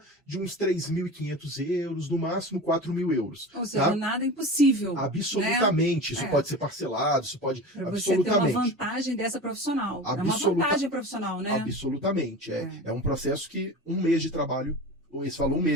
de uns 3.500 euros, no máximo 4.000 euros. Ou seja, nada impossível. Absolutamente. Né? Isso pode ser parcelado, isso pode... Pra você ter uma vantagem dessa profissional. É uma vantagem profissional, né? Absolutamente. É um processo que um mês de trabalho, esse falou um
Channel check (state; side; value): normal; both; correlation 0.31